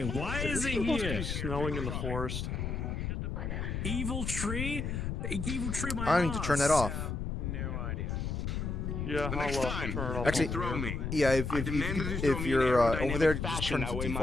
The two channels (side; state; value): left; noise; rumble, 3 dB below the sound